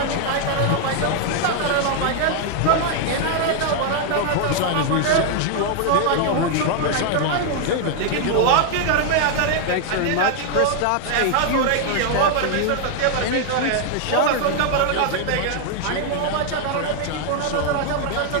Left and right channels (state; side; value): different; both; correlation 0.00